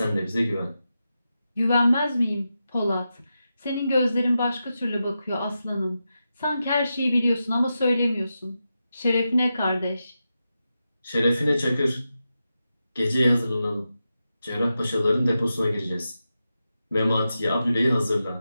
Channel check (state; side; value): inverted; both; correlation -0.90